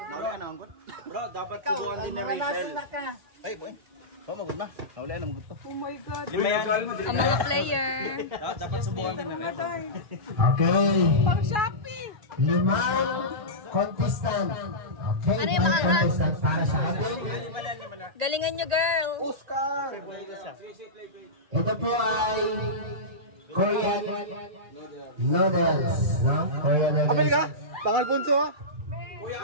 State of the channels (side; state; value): left; late; 2.4 ms